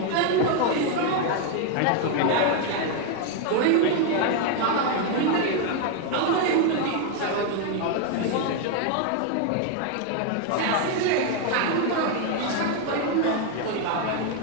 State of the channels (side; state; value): both; different; correlation 0.01